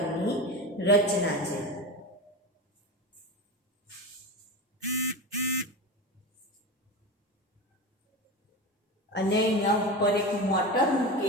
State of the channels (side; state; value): both; normal; correlation 0.24